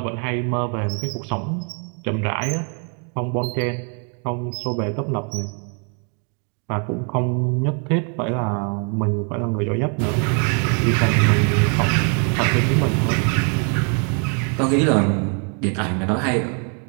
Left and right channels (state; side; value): quieter; left; 40.0 dB